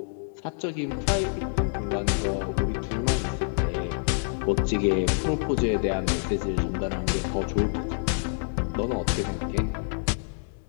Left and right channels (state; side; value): silent; right; digital silence